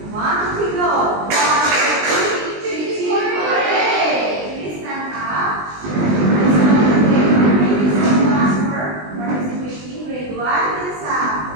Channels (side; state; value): left; late; 20 ms